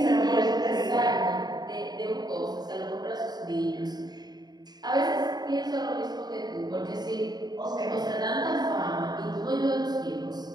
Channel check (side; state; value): left; late; 0.20 ms